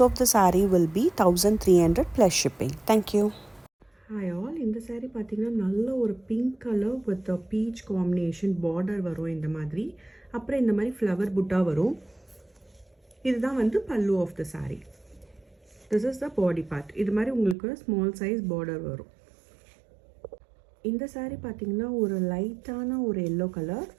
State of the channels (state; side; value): drops out; left; at 17.6 s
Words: of the saree will be 1300 plus shipping. Thank you. Hi all, இந்த saree பார்த்தீங்கன்னா நல்ல ஒரு pink colour with beach combination border வரும் இந்த மாதிரி. அப்புறம் இந்த மாதிரி ஃப்ளவர் புட்டா வரும். இதுதான் வந்து pallu of the saree. This is the body part. இது மாதிரி உங்களுக்கு ஸ்மால் சைஸ் பார்டர் வரும். இந்த saree பார்த்தீங்கன்னா ஒரு லைட்டான ஒரு எல்லோ கலர்.